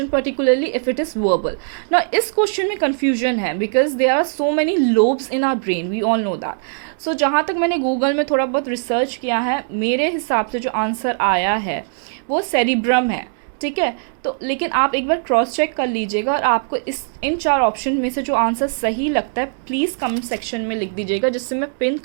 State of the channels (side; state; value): left; silent; 66 dB below the other